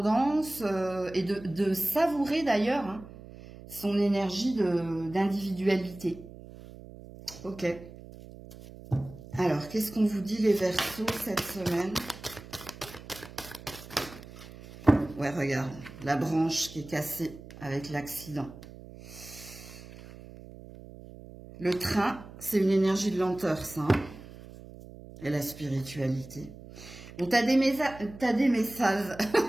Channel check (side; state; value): right; noise; hum, 17 dB below the sound